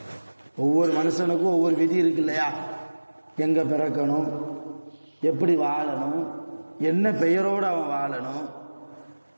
ஒவ்வொரு மனுஷனுக்கும் ஒவ்வொரு விதி இருக்கு இல்லையா? எங்கே பிறக்கணும், எப்படி வாழணும், என்ன பெயரோடு அவன் வாழணும்,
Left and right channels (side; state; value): both; inverted; correlation -1.00